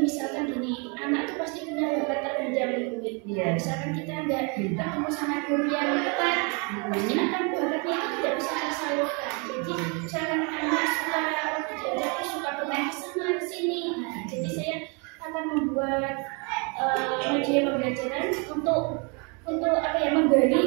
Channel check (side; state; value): left; quieter; 33.5 dB